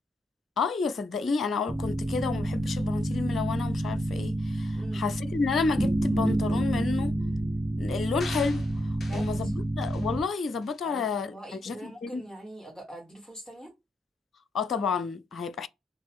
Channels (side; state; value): both; normal; correlation 0.82